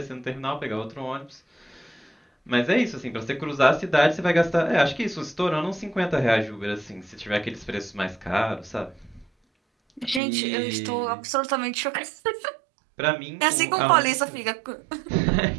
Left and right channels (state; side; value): drops out; left; at 10.2 s